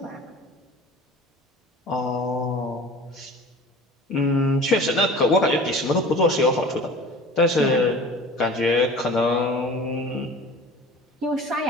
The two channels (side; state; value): both; normal; correlation 0.41